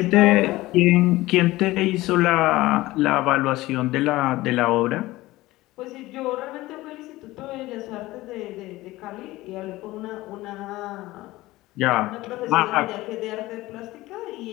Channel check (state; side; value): quieter; right; 18.3 dB